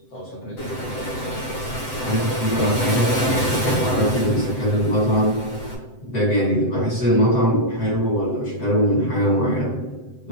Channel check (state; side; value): late; right; 7.8 ms